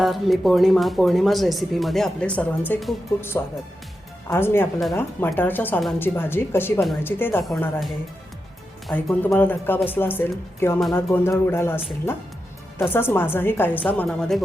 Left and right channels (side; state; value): both; normal; correlation 0.88